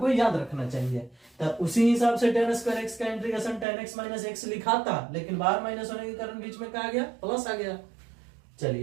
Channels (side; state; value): left; drops out; at 3.7 s